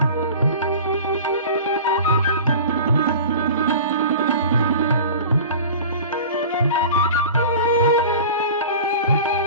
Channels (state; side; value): inverted; both; correlation -0.38